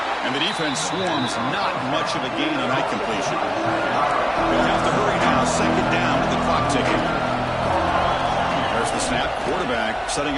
And the defense swarms not much of a gain on that completion. They'll have to hurry now. Second down with the clock ticking. There's the snap. Quarterback setting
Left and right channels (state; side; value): identical; both; correlation 1.00